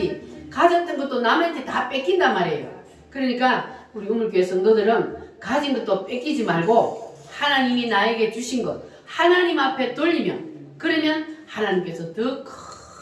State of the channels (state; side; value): identical; both; correlation 1.00